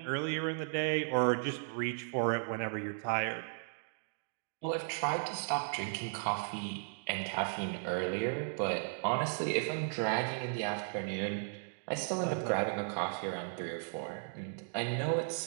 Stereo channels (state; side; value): silent; left; digital silence